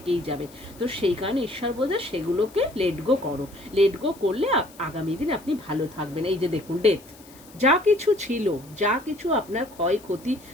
যাবে। তো সেই কারণে ঈশ্বর বলছে সেগুলোকে লেট গো করো, লেট গো করলে আগামী দিন আপনি ভালো থাকবেন। এই যে দেখুন ডেথ, যা কিছু ছিল, যা কিছু আপনার ক্ষয়ক্ষতি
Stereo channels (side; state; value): left; noise; hiss, 23 dB below the sound